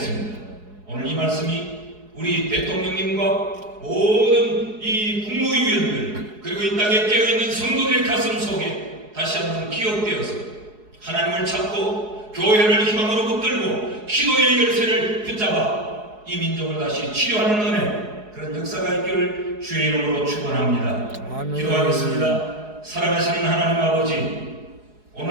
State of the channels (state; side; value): late; left; 4.7 ms